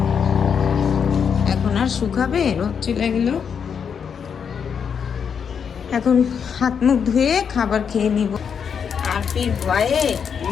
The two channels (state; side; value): quieter; right; 7.0 dB